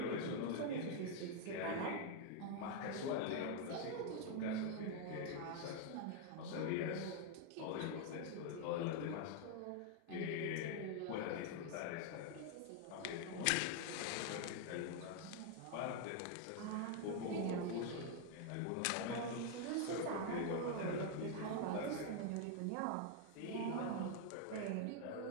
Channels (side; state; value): both; different; correlation 0.00